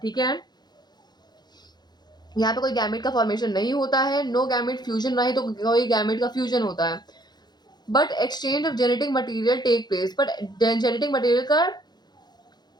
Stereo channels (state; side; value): late; right; 0.20 ms